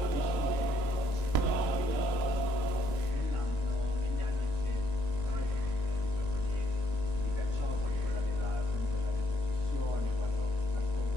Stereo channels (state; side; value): late; right; 1.9 ms